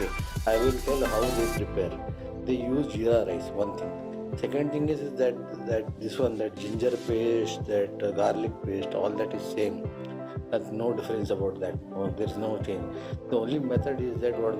I will tell how they prepare. They use jeera rice, one thing. Second thing is that this one, that ginger paste, that garlic paste, all that is same. That's no difference about that. There is no change. The only method is that what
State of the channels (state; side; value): identical; both; correlation 1.00